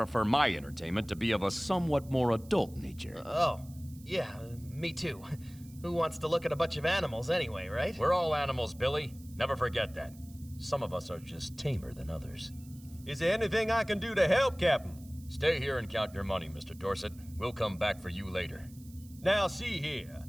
my entertainment to be of a somewhat more adult nature. Oh, yeah, me too. Who wants to look at a bunch of animals anyway, right? We're all animals, Billy. Never forget that. Some of us are just tamer than others. Is there anything I can do to help, Captain? Stay here and count your money, Mr. Dorset. We'll come back for you later. Now see here,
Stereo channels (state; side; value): noise; right; hiss, 24 dB below the sound